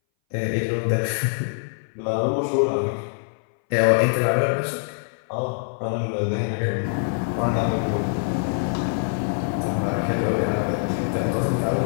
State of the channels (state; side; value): silent; right; 60 dB below the other